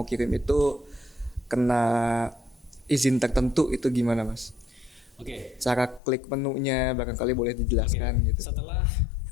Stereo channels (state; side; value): drops out; right; at 6.0 s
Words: kirim itu kena izin tertentu itu gimana Mas? Oke. Cara klik menunya barangkali boleh dijelaskan gitu. Setelah